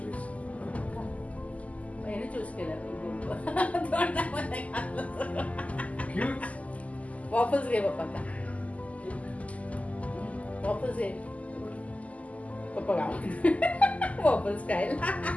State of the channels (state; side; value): late; right; 0.070 ms